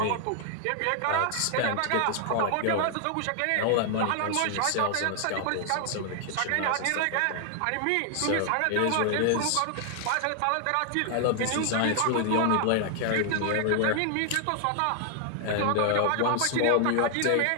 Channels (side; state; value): both; different; correlation 0.00